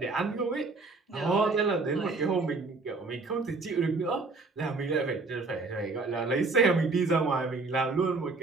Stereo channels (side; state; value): left; quieter; 3.8 dB